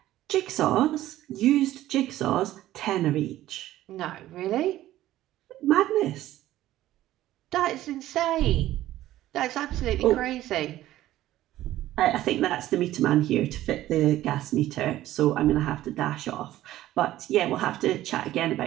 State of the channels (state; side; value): quieter; left; 14.5 dB